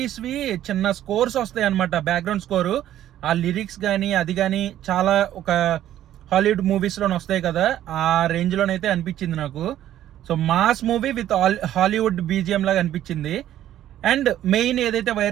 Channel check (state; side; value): quieter; left; 12.2 dB